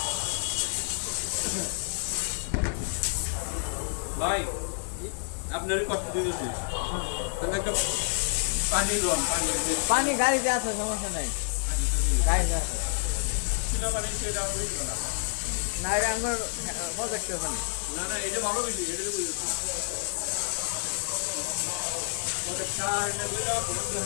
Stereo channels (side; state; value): right; silent; 59 dB below the other